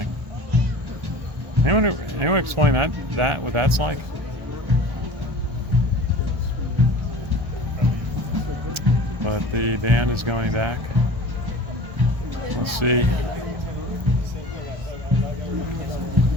Anyone explain that what that's like? But the band is going back. Let's see.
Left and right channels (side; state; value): left; late; 1.3 ms